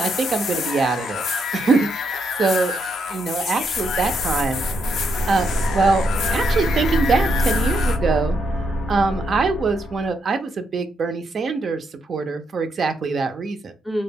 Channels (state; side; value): normal; both; correlation 0.78